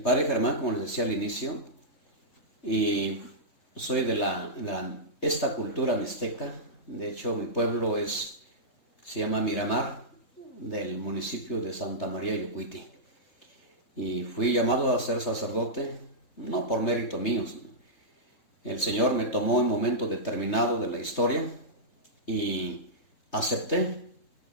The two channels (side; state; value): right; late; 3.3 ms